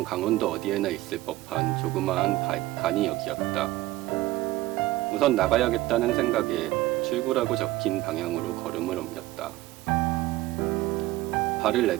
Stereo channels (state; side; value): quieter; left; 17.6 dB